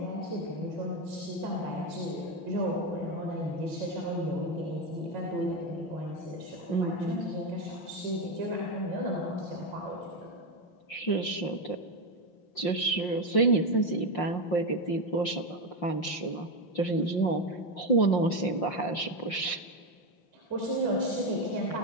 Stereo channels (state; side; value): late; right; 5.7 ms